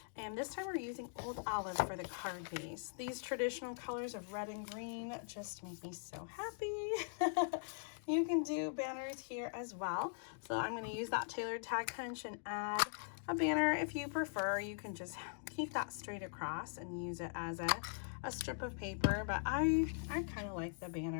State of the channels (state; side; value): silent; right; digital silence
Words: and this time we're using Old Olive for the card base. These traditional colors of red and green just make me so happy. You can do banners here as well. So I'm going to use that tailored tag punch and add a banner. If you prefer, you can just keep that straight across and use it as a strip of paper, but I kind of like the